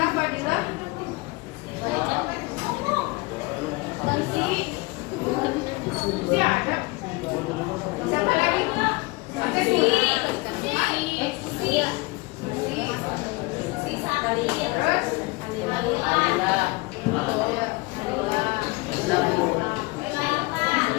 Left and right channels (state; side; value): quieter; right; 24.2 dB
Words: Fadila? Si ada? Siapa lagi? Ada si Sari. Terus?